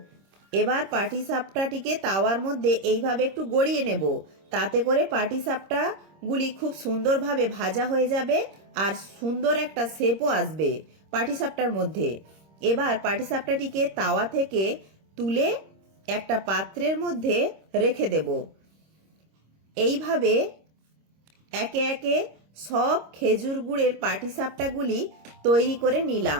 এবার পাটিসাপটাটিকে তাওয়ার মধ্যে এইভাবে একটু গড়িয়ে নেব, তাতে করে পাটিসাপটাগুলি খুব সুন্দরভাবে ভাজা হয়ে যাবে আর সুন্দর একটা শেপও আসবে পাটিসাপটার মধ্যে। এবার পাটিসাপটাটিকে তাওয়া থেকে তুলে একটা পাত্রের মধ্যে রেখে দেব। এইভাবে একে একে সব খেজুর গুড়ের পাটিসাপটাগুলি তৈরি করে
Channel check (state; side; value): late; left; 26 ms